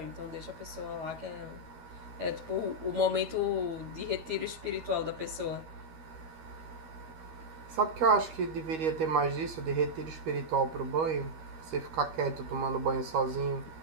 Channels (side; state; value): left; late; 13 ms